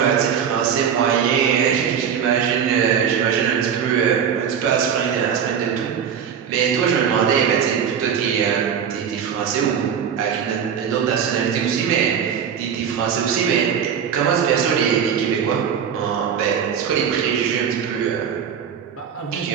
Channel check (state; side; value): quieter; left; 7.8 dB